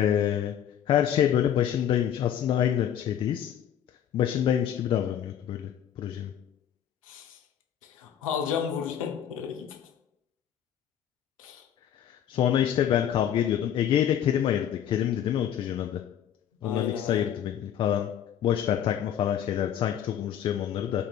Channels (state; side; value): quieter; right; 9.8 dB